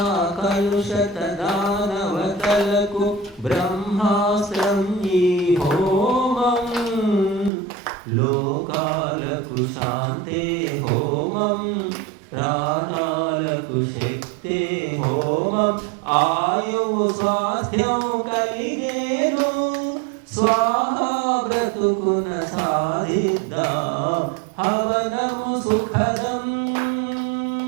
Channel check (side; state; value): left; drops out; at 7.5 s